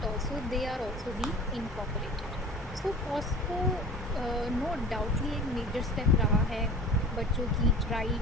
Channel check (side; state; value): both; normal; correlation 0.40